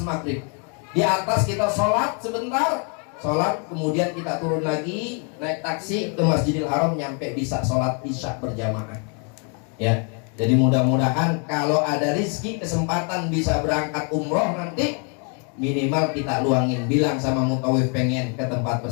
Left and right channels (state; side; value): quieter; right; 38.5 dB